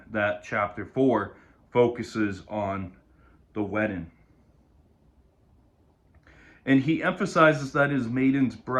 that chapter 4 focuses on the wedding. And he emphasizes that his maiden's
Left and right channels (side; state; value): both; identical; correlation 1.00